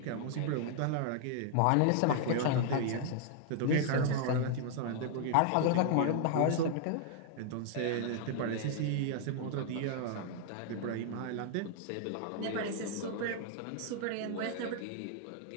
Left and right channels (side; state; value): both; different; correlation -0.01